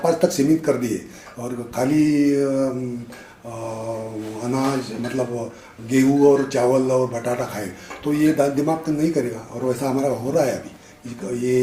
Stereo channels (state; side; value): identical; both; correlation 1.00